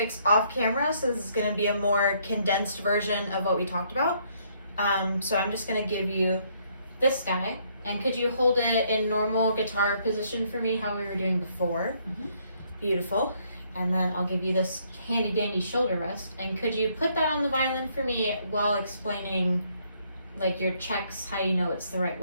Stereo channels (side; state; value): both; inverted; correlation -0.69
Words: off camera, so this is going to be a more condensed version of what we talked about. So I'm just going to give you this guy, and could you hold it in normal guitar position for me, how we were doing before? Mm-hmm. Beautiful. And then I'll give you this handy dandy shoulder rest, and could you put that on the violin for me while explaining like your checks, how you know it's the right